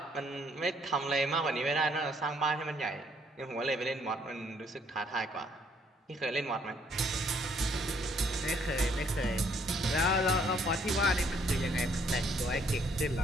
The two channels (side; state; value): both; normal; correlation 0.66